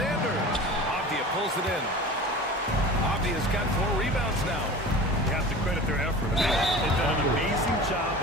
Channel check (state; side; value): normal; both; correlation 0.37